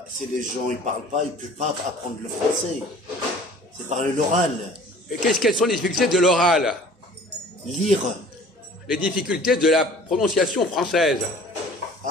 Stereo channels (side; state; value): both; normal; correlation 0.48